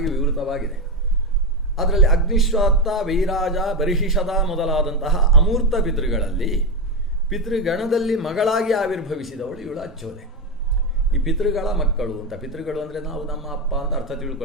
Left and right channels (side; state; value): both; normal; correlation 0.11